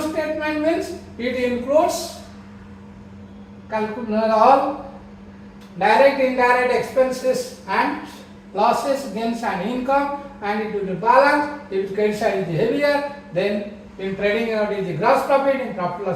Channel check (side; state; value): both; identical; correlation 1.00